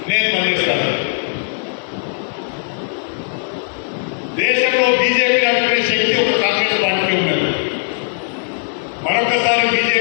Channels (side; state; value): right; silent; 61 dB below the other